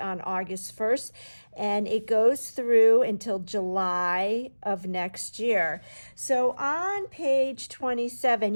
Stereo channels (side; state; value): both; inverted; correlation -1.00